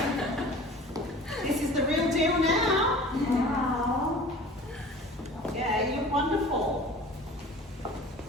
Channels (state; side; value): normal; both; correlation 0.42